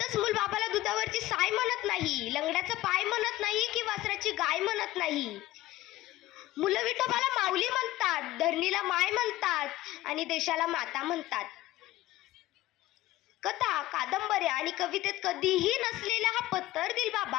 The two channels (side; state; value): right; quieter; 16.6 dB